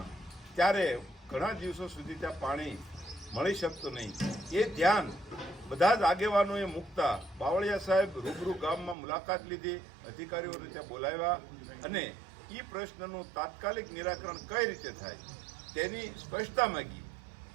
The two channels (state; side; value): drops out; left; at 9.0 s